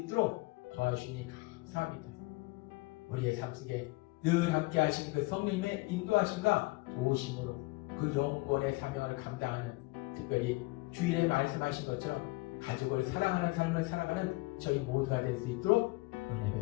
도와주시니 감사합니다. 우리의 삶 속에 늘 함께 하시는 그 성령님의 인도하심과 도우심으로 그 영권의 사명을 감당하는, 특별히 주일에 말씀하신 것처럼 가족을 사랑하는 삶을 살아가는 저희 모두가 될 수 있도록 은혜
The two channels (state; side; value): quieter; right; 23.5 dB